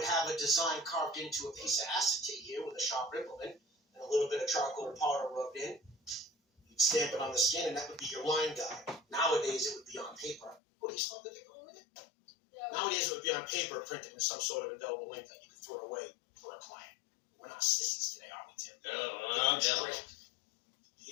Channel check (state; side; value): drops out; right; at 10.6 s